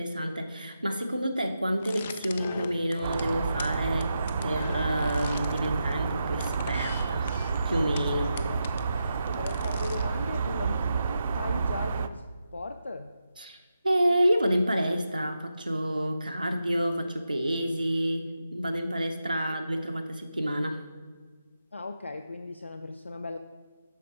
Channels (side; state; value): both; inverted; correlation -0.87